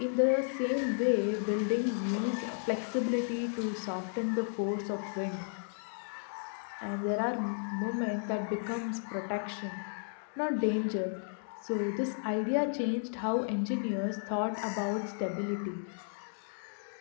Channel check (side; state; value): right; silent; digital silence